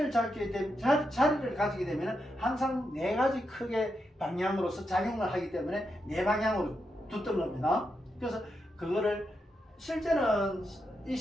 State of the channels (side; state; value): both; normal; correlation 0.84